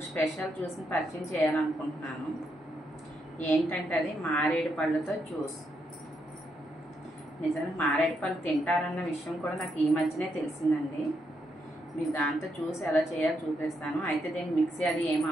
స్పెషల్ జ్యూస్ని పరిచయం చేయాలనుకుంటున్నాను. ఏంటంటే అది మారేడు పళ్ళతో జ్యూస్. నిజంగా మారేడు పళ్ళు తింటారన్న విషయం కూడా నాకు ఈ మధ్యనే తెలిసిందండి. మీకు దాంతో జ్యూస్ ఎలా చేయాలో చూపిస్తాను. అయితే దీనికి మిక్సీ అది ఏం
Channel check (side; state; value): both; normal; correlation 0.79